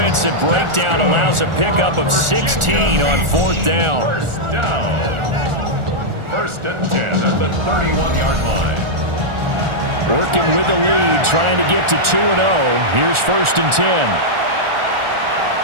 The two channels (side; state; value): left; late; 1.4 ms